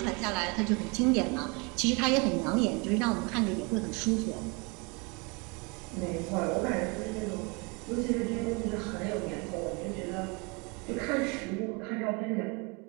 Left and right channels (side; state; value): left; quieter; 30.1 dB